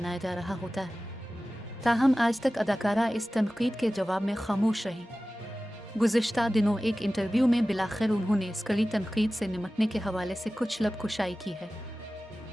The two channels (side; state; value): both; normal; correlation 0.96